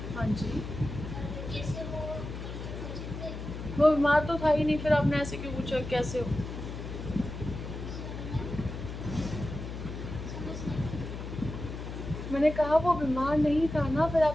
हाँ जी। और कैसे वो पूछे थे। वो बीमार तो था ही नहीं, फिर आपने ऐसे क्यों पूछा कैसे हो? समझ नहीं। मैंने कहा वो बीमार नहीं था ना, फिर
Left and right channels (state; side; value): noise; left; hum, 8 dB below the sound